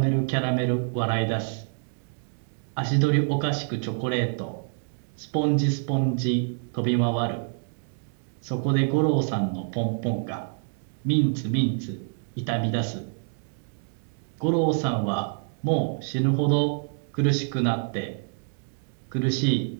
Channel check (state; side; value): silent; left; digital silence